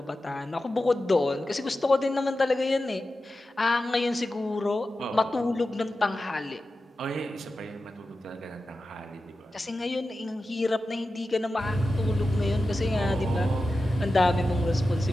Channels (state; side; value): normal; both; correlation 0.93